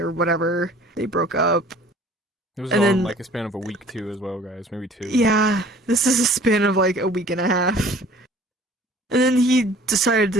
whatever. They broke up. It was And all in then- like a span of a week too, as well, guys. Maybe 2. Yeah, this is a span of like a week and a half. And then he decided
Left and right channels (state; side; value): normal; both; correlation 0.50